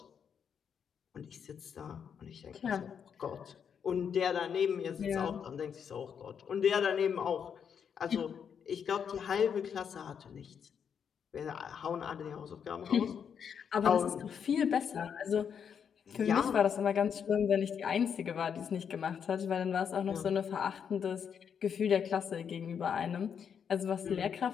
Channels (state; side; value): quieter; right; 7.4 dB